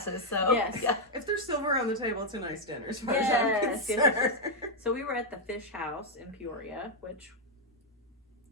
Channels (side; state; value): both; normal; correlation 0.00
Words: So Yes. yeah. If there's silver on the table, it's a nice dinner as far Yes, as I'm yes, concerned. So we were at the fish house in Peoria, which